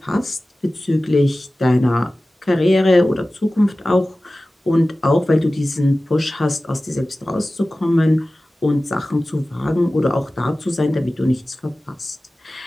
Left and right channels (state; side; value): normal; both; correlation 0.96